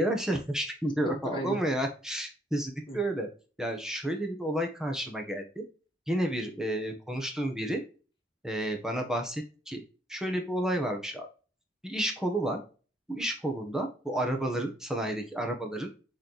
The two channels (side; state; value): both; normal; correlation 0.68